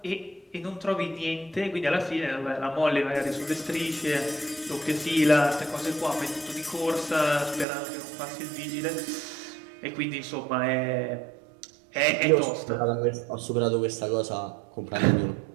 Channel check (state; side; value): drops out; left; at 7.7 s